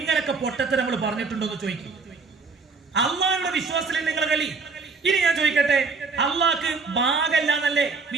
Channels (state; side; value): quieter; left; 4.4 dB